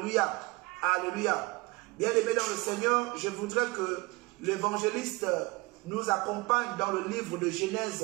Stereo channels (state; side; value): quieter; left; 24.2 dB